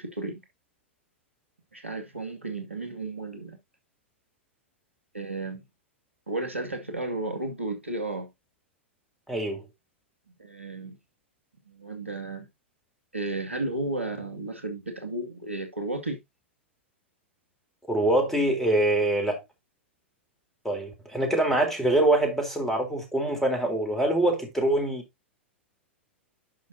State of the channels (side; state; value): both; normal; correlation 0.33